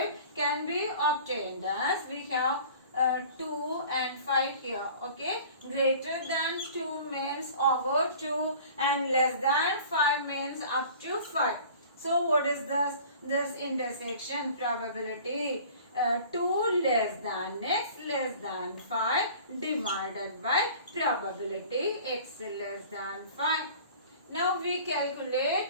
can be obtained as we have 2 and 5 here. Okay, greater than 2 means over 2 and less than 5 means up to 5. So what is this intersection probability? 2 less than x less than 5 divided by probability x less than 5. Now we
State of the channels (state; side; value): inverted; both; correlation -0.45